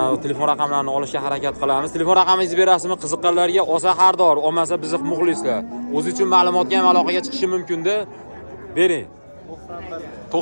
telefon raqamlarini olishga harakat qilamiz. Telefon raqamingizni berasizmi? Qiziqqanlarga olsa har doim, olmasa bizni muxlislar. O'zi uchun ma'lumotga ham aloqaga chiqishi mumkin-da. Bering.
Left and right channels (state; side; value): inverted; both; correlation -1.00